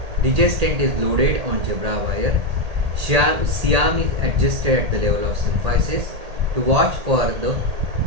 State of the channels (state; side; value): late; left; 1.8 ms